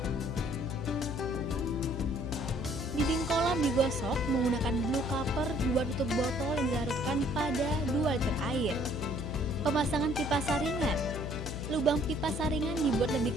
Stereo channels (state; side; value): noise; left; hum, 6 dB below the sound